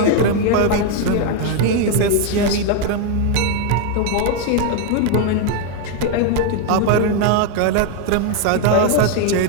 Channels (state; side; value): different; both; correlation 0.01